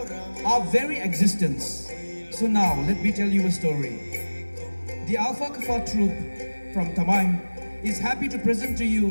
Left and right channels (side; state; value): both; inverted; correlation -1.00